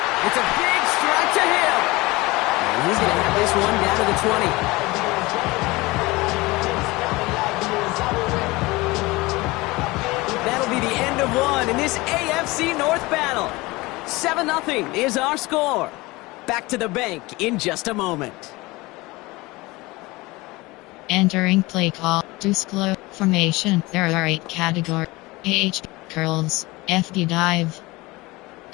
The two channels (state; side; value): quieter; right; 22.0 dB